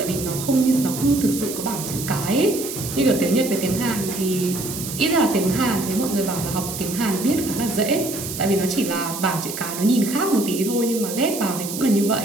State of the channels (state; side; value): noise; right; hiss, 8 dB below the sound